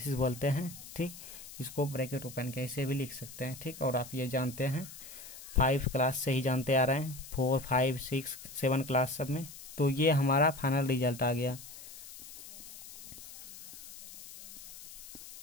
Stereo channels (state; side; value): noise; left; hiss, 14 dB below the sound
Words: बोलते हैं। ठीक, इसको ब्रैकेट ओपन के ऐसे भी लिख सकते हैं। ठीक, और आप ये जानते हैं 5 क्लास से ही जानते आ रहे हैं, 4, 5, 6, 7 क्लास सब में। तो ये हमारा फाइनल रिजल्ट आ गया।